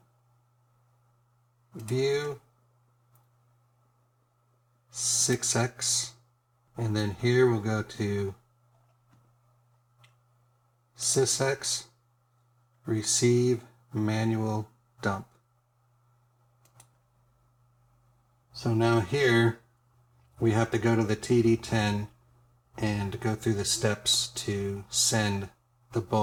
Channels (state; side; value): identical; both; correlation 1.00